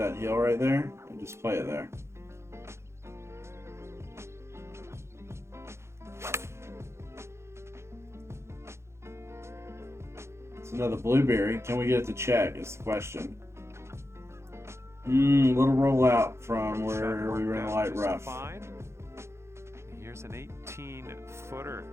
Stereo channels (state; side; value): late; left; 0.13 ms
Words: hill right there and just play it there. It's another blueberry. Can we get it to check is the question. Little rollout from where we were in the light rough. Here's an 18-footer.